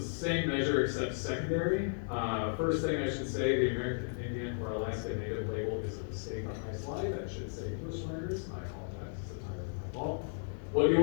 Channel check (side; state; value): right; silent; digital silence